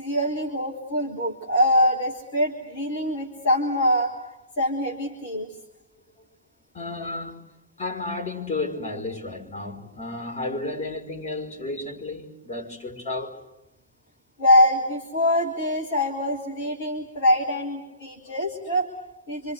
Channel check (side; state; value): both; inverted; correlation -0.49